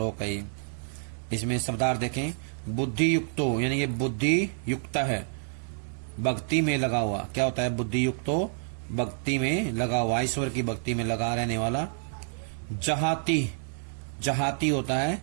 है। इसमें शब्दार्थ देखें। बुद्धि युक्तो यानी ये बुद्धि युक्त है, भक्ति में लगा हुआ। क्या होता है बुद्धि युक्तो? भक्ति में लगा हुआ, ईश्वर की भक्ति में लगा रहने वाला। जहाती होता है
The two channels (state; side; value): silent; left; digital silence